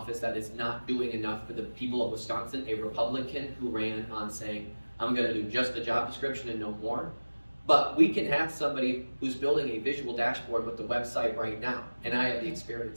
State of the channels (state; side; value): inverted; both; correlation -1.00